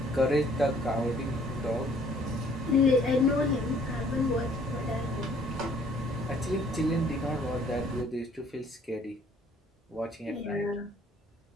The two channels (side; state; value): both; normal; correlation 0.59